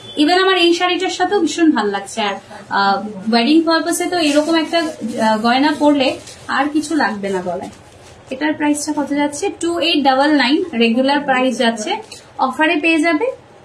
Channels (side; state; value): both; identical; correlation 1.00